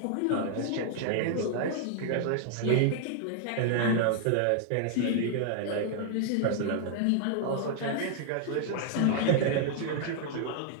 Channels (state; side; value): different; both; correlation 0.00